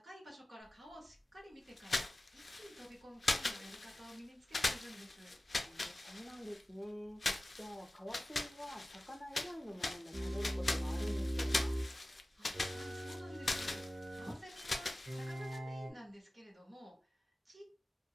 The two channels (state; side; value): normal; both; correlation 0.97